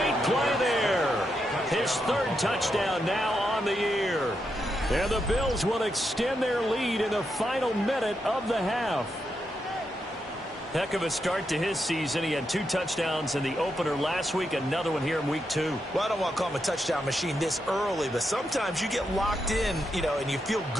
play there. His third touchdown now on the year. And the Bills will extend their lead in the final minute of the half. Heck of a start to his season. He had 2 touchdowns in the opener last week, another one here in week 2. Well, I don't want to call him a touchdown machine this early, but sometimes you get locked in, and you feel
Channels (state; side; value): normal; both; correlation 0.84